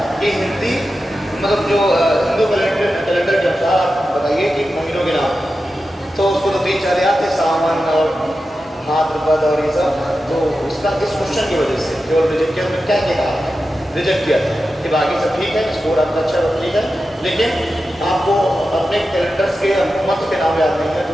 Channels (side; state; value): both; normal; correlation 0.91